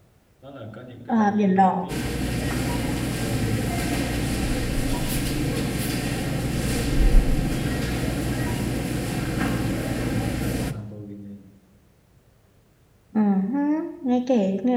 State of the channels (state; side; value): identical; both; correlation 1.00